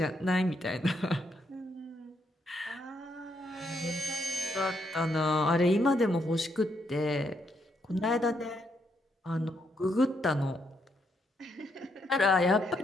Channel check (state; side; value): normal; both; correlation 0.76